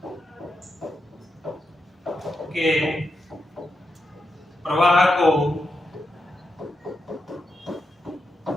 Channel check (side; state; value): both; normal; correlation 0.86